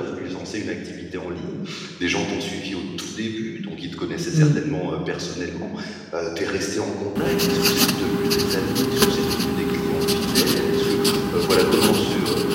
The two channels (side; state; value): both; identical; correlation 1.00